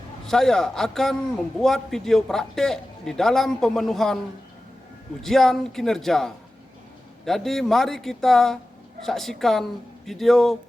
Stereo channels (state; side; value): normal; both; correlation 0.95